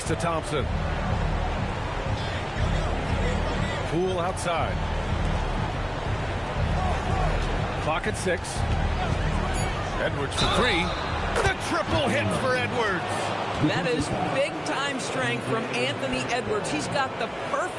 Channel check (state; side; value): identical; both; correlation 1.00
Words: to Thompson. Poole outside. Clock at 6. Edwards for 3. The triple hit for Edwards. That is big-time strength from Anthony Edwards. He's got the